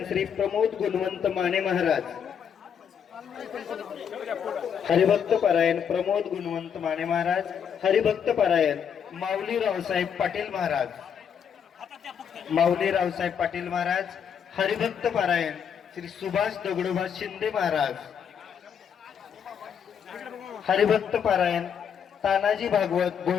श्री प्रमोद गुणवंत माने महाराज. हरिभक्त पारायण प्रमोद गुणवंत माने महाराज. हरिभक्त पारायण माऊली रावसाहेब पाटील महाराज. माऊली रावसाहेब पाटील महाराज. हरिभक्त पारायण श्री सुभाष दगडोबा शिंदे महाराज. हरिभक्त पारायण तानाजी भागवत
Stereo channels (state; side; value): quieter; right; 7.7 dB